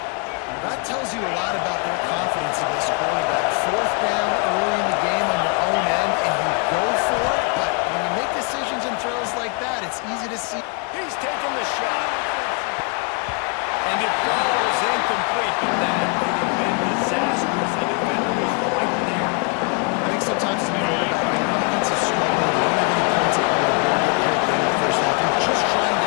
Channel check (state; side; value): quieter; right; 36.3 dB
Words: That tells you a lot about their confidence in this quarterback. Fourth down early in the game on your own end, and you go for it. But when you make decisions and throws like that, it's easy to see. He's taking the shot. And it falls incomplete, but that could have been disastrous. The defender was right there. I think sometimes as a quarterback, when your offense is struggling, you don't have any points up on the board here at the end of the first half. You're just trying